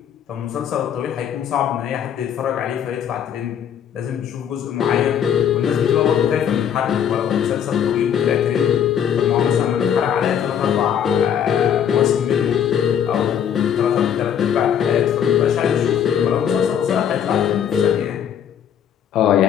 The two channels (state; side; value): quieter; right; 8.8 dB